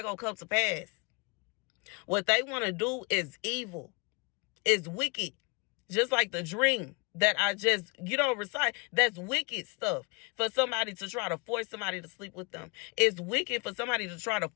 gonna come to pass. What they want to do is evil, is wicked, just like the dream that I just, recite. That's wicked stuff for somebody to try to force somebody to sleep with them. It's wicked for somebody to try to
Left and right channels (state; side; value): quieter; right; 31.0 dB